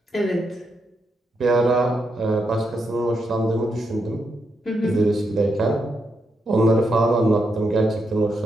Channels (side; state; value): both; normal; correlation 0.82